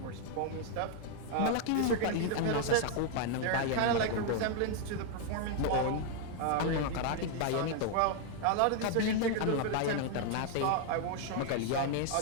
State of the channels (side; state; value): both; different; correlation 0.00